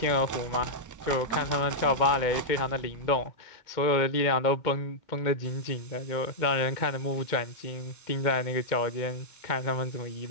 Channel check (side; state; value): right; late; 2.2 ms